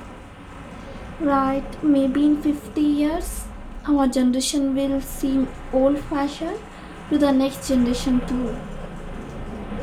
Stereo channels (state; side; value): identical; both; correlation 1.00